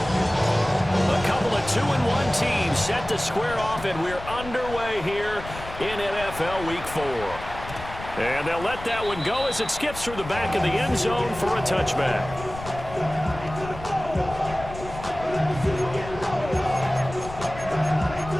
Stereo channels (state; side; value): noise; left; rumble, 12 dB below the sound